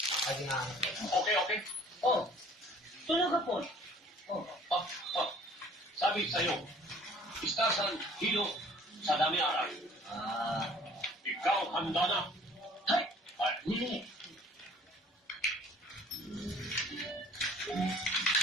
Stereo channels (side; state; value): both; normal; correlation 0.53